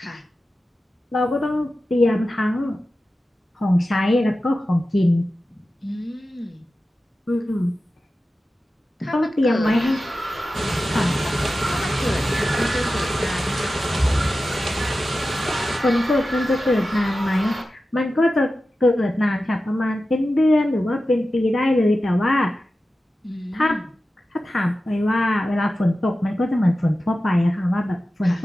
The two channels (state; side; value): normal; both; correlation 0.93